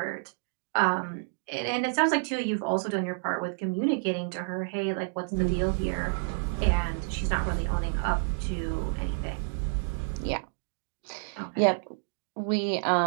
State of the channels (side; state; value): left; silent; digital silence